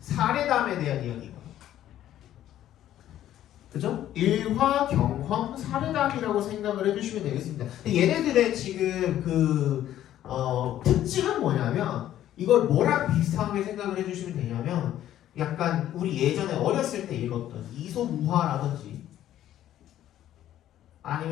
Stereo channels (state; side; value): quieter; right; 12.2 dB